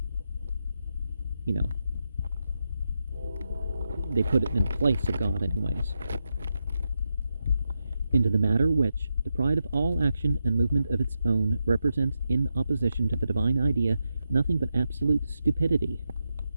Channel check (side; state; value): both; inverted; correlation -0.86